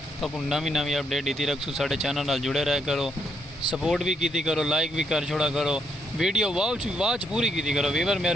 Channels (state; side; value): normal; both; correlation 0.75